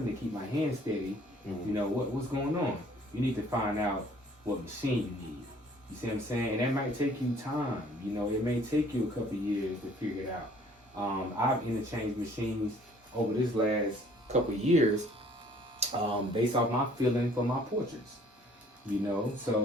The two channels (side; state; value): both; normal; correlation 0.57